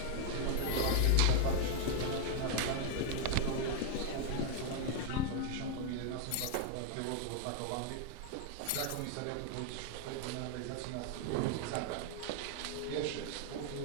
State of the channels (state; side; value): different; both; correlation 0.00